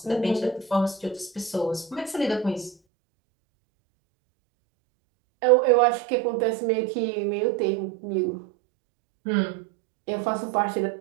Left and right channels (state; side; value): drops out; left; at 2.8 s